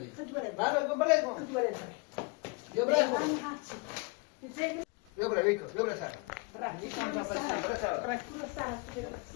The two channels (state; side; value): quieter; right; 28.9 dB